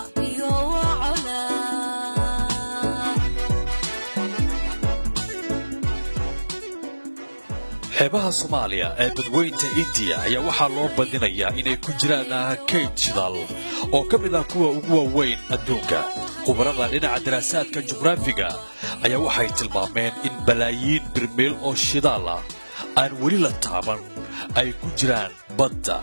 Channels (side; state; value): both; inverted; correlation -1.00